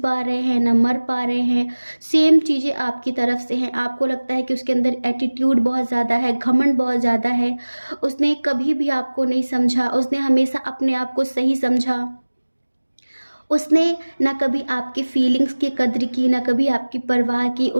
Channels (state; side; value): inverted; both; correlation -1.00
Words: रहे हैं ना मर पा रहे हैं। सेम चीज़ें आपकी तरफ से हैं। आपको लगता है कि उसके अंदर एटीट्यूड बहुत ज़्यादा है, घमंड बहुत ज़्यादा है। उसने कभी भी आपको नहीं समझा। उसने हमेशा अपने आप को सही समझा। उसने ना कभी आपकी फीलिंग्स की कद्र की, ना कभी आपकी परवाह की।